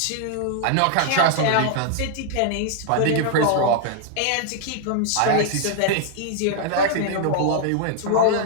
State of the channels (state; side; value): different; both; correlation 0.00